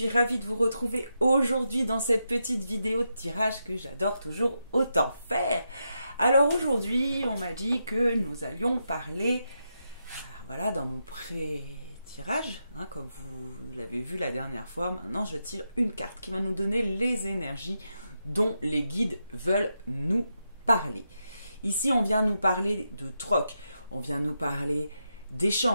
ravie de vous retrouver aujourd'hui dans cette petite vidéo de tirage que j'adore toujours autant faire. Alors aujourd'hui, on m'a dit que nous allions parler, voilà, dans mon pré-tirage, comme vous l'avez vu la dernière fois, maintenant je tire une carte qui va nous donner les énergies dont les guides veulent nous parler. Ici, on vient nous parler de troc, on vient nous parler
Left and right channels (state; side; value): inverted; both; correlation -0.85